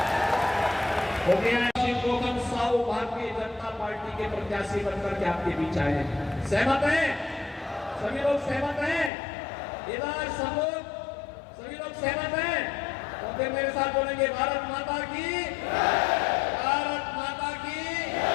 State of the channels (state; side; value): drops out; right; at 9.1 s